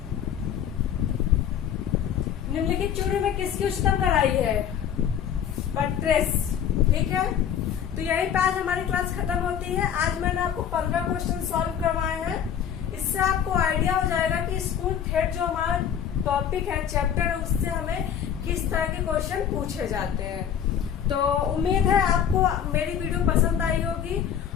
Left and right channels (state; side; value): quieter; right; 8.8 dB